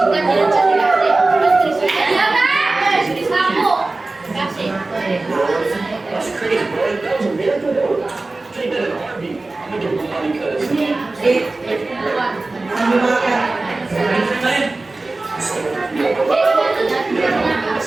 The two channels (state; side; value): quieter; left; 3.2 dB